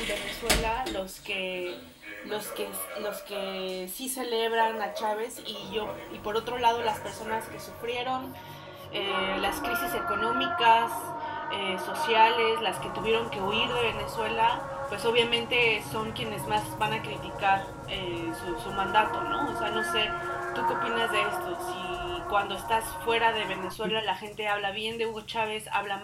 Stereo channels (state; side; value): identical; both; correlation 1.00